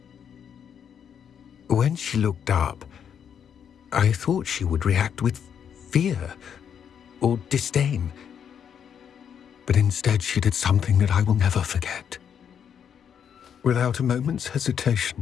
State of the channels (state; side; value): quieter; right; 8.1 dB